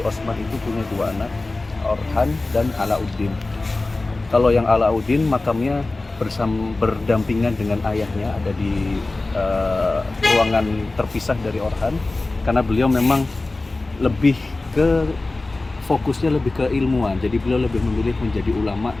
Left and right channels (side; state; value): right; quieter; 3.2 dB